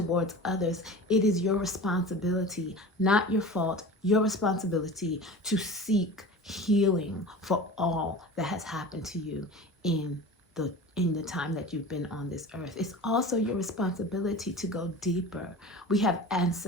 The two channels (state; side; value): normal; both; correlation 0.35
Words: others. It is your responsibility, not your fault, your responsibility to seek healing for all that has happened to you in the time that you've been on this earth. It's also your responsibility to go deeper. We have